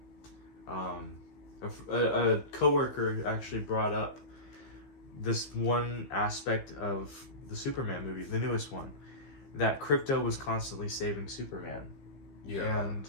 A coworker actually brought up this one aspect of the Superman movie, the newest one, that Krypto was constantly saving Superman. Yeah. And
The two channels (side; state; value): right; late; 15 ms